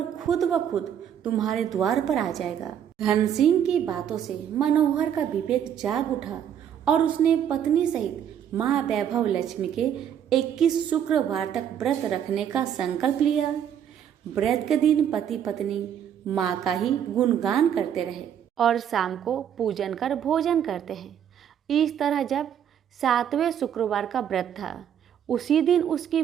खुद ब खुद तुम्हारे द्वार पर आ जाएगा। धन सिंह की बातों से मनोहर का विवेक जाग उठा और उसने पत्नी सहित माँ वैभव लक्ष्मी के 21 शुक्रवार तक व्रत रखने का संकल्प लिया। व्रत के दिन पति पत्नी माँ का ही गुणगान करते रहे और शाम को पूजन कर भोजन करते हैं। इस तरह जब 7वें शुक्रवार का व्रत था, उसी दिन उसकी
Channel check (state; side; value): quieter; left; 9.2 dB